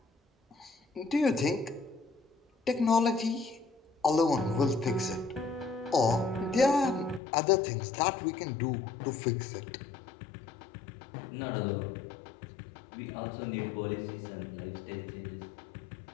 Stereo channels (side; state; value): right; drops out; at 7.2 s